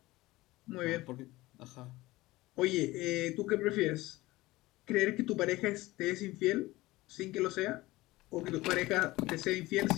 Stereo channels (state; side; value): quieter; right; 19.0 dB